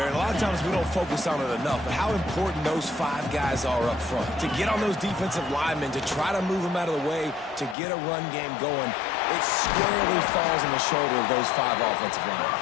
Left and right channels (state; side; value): drops out; right; at 7.8 s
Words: And a lot of times we don't focus on it enough. But how important those 5 guys are up front. To get on those defensive linemen, to try to move them out of the way, to get a run game going, it squarely falls on the shoulder of those 5 offensive linemen.